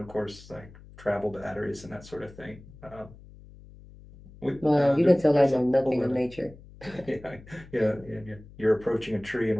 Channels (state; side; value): noise; left; hum, 20 dB below the sound